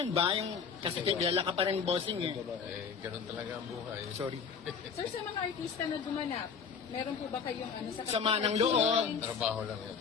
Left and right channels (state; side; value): quieter; right; 6.1 dB